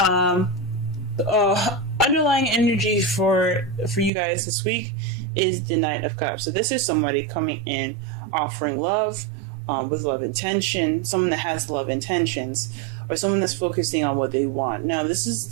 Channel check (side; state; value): left; drops out; at 4.1 s